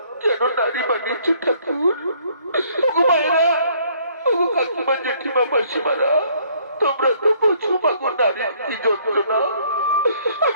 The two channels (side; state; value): both; inverted; correlation -0.62